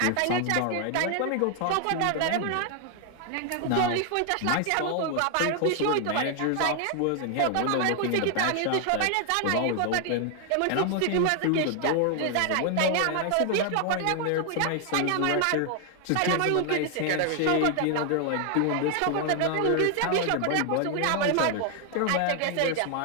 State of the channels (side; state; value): both; different; correlation 0.00